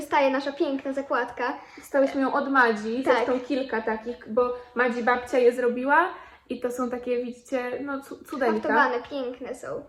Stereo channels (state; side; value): identical; both; correlation 1.00